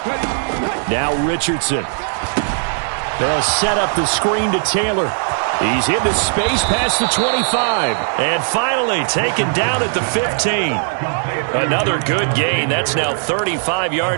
Now Richardson. They'll set up the screen to Taylor. He's into space past the 25. And finally taken down at the 15. Another good gain. That's now 35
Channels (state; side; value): silent; left; digital silence